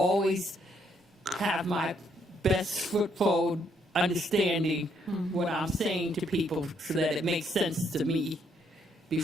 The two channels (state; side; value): normal; both; correlation 0.72